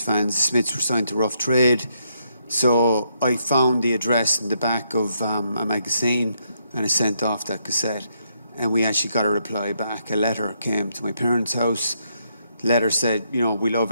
fans. The Smiths were signed to Rough Trade. So I found the address in the back of a magazine and I sent off that cassette. And we actually got a reply back. A letter came to my parents' house. The letter said, we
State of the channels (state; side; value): inverted; both; correlation -0.77